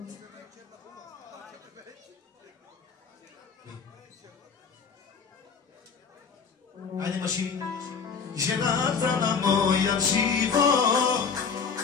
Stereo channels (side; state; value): right; quieter; 5.8 dB